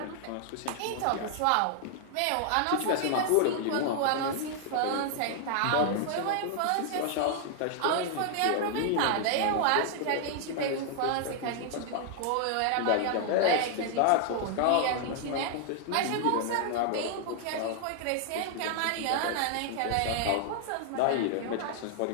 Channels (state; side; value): different; both; correlation 0.00